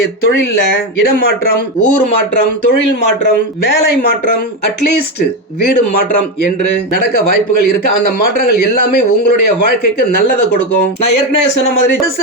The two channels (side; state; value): both; normal; correlation 0.12